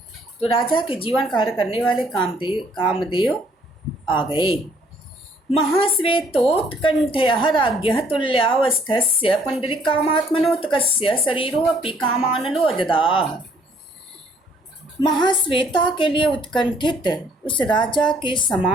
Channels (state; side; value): normal; both; correlation 0.62